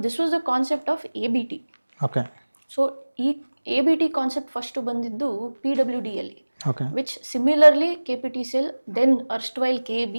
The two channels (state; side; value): inverted; both; correlation -1.00